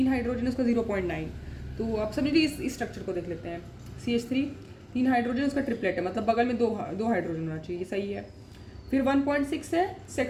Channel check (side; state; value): both; identical; correlation 1.00